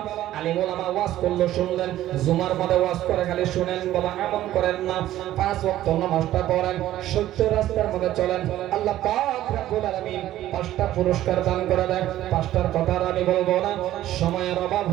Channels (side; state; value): left; quieter; 13.7 dB